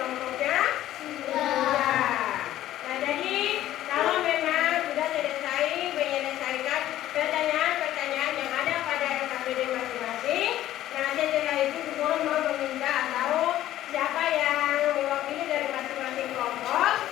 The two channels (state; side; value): quieter; right; 13.5 dB